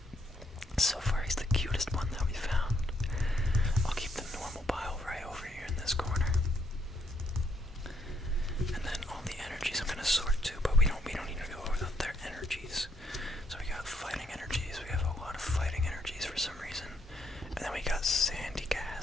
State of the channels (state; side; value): normal; both; correlation 0.73